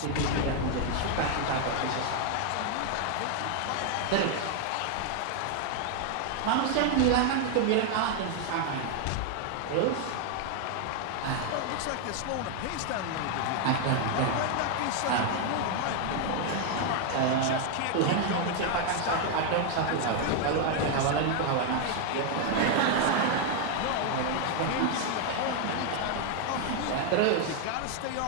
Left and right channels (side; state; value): both; different; correlation 0.00